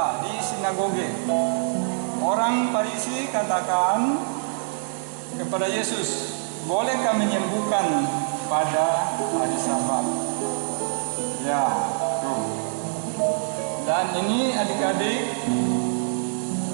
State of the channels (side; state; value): left; silent; digital silence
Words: di sinagoge. Orang Farisi katakan kepada Yesus, bolehkah menyembuhkan pada hari Sabat? Ya, tuh. Dan ini adik-adik,